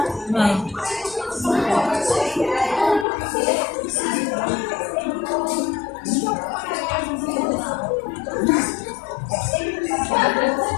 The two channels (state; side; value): drops out; right; at 3.1 s